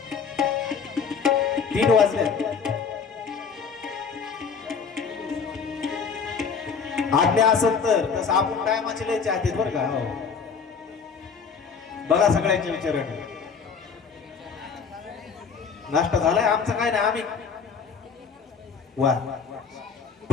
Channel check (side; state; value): right; quieter; 5.9 dB